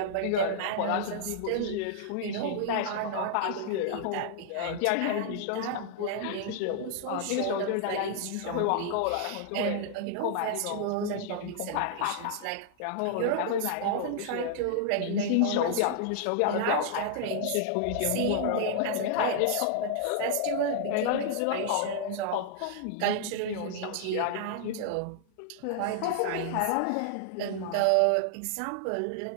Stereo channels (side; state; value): both; different; correlation -0.01